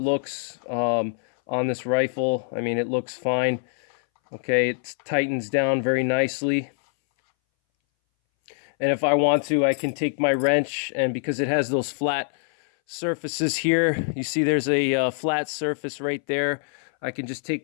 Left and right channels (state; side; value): silent; right; 61 dB below the other